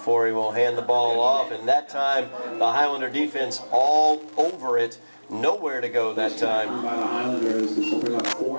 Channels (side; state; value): both; inverted; correlation -1.00